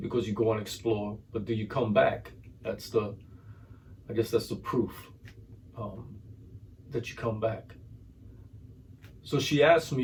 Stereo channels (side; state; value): both; identical; correlation 1.00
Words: because you go and explore, but do you come back? I guess that's the proof that you come back. So she asked